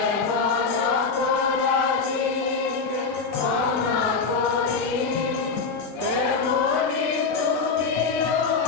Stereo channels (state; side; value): quieter; right; 4.8 dB